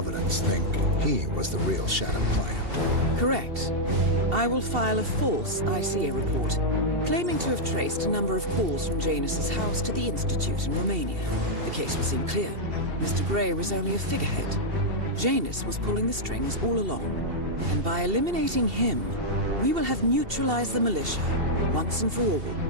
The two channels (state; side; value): late; left; 2.7 ms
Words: think he was the real Shattered Plant. Correct. I will file a false ICA report, claiming to have traced a number of calls from Janus's house to the Institute in Romania. The case will seem clear. Mr. Gray was only a figurehead. Janus was pulling the strings all along. And by eliminating him, we will have neutralized the militia, once and for all.